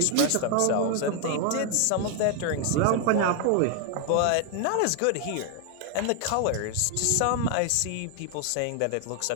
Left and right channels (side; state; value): both; different; correlation 0.01